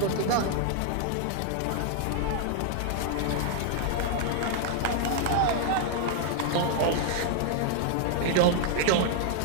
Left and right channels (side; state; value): both; different; correlation 0.00